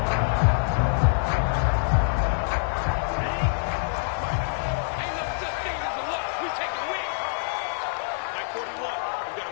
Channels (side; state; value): right; silent; digital silence